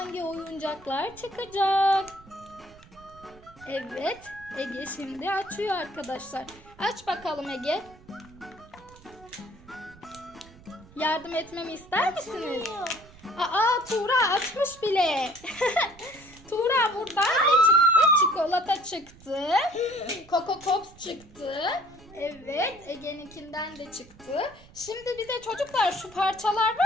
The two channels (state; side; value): noise; right; rumble, 23 dB below the sound